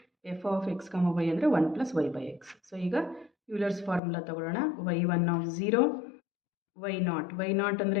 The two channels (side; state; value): right; drops out; at 4.0 s